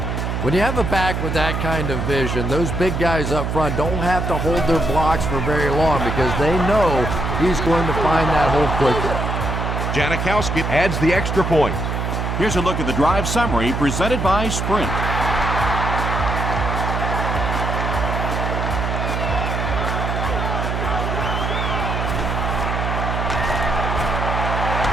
When you have a back with that kind of vision, those big guys up front don't have to hold their blocks for very long because they know he's going to find that hole quickly. Janikowski adds the extra point. Here's a look at the drive summary presented by Sprint.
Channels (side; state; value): right; noise; hum, 2 dB below the sound